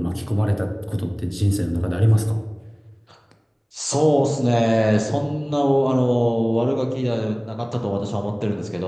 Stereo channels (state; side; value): identical; both; correlation 1.00